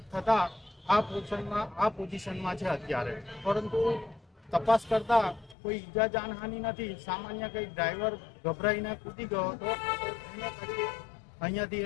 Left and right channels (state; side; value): drops out; right; at 5.6 s